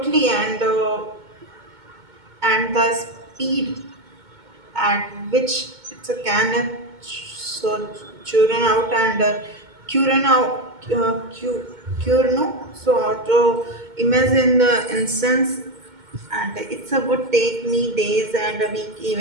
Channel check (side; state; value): left; late; 2.2 ms